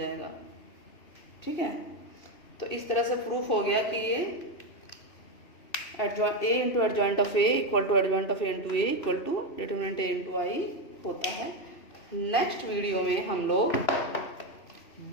ठीक है, तो इस तरह से प्रूफ हो गया कि ये A into adjoint of A equal to adjoint of A into A equal to determinant A into I होता है। नेक्स्ट वीडियो में हम लोग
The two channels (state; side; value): late; right; 2.7 ms